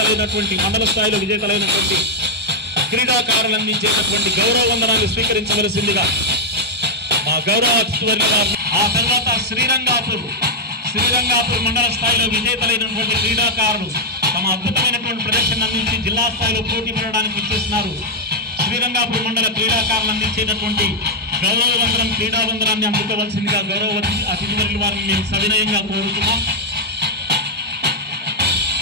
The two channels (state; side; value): normal; both; correlation -0.02